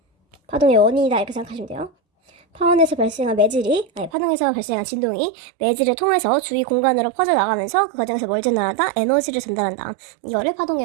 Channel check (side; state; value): left; drops out; at 4.1 s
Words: 파동의 원인이다 이렇게 생각하시면 돼요. 파원에서 발생한 파동에서 발생한 진동이 매질을 통해서 주위 공간으로 퍼져나가면서 그 과정에서 뭘 전달한다? 에너지를 전달한다. 이거를